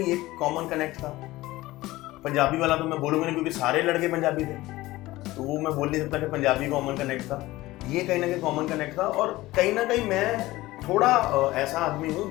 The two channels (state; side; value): quieter; right; 18.2 dB